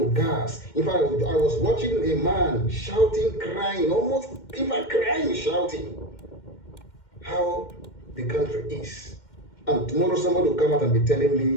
gas. In fact, I was watching a man shouting, crying, almost, in fact, crying, shouting how the country is. And tomorrow somebody will come out and be telling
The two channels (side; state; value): right; late; 2.1 ms